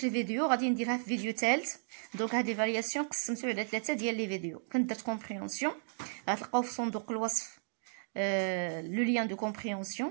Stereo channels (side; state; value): left; silent; digital silence